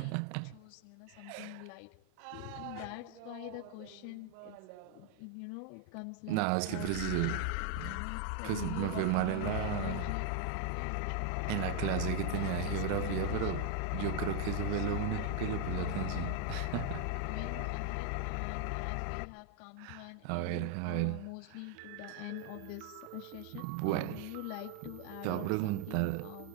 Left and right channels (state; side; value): different; both; correlation 0.00